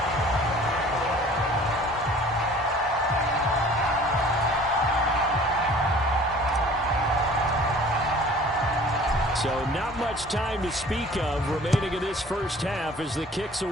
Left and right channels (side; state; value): both; normal; correlation 0.48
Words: So not much time to speak of remaining in this first half as the kick's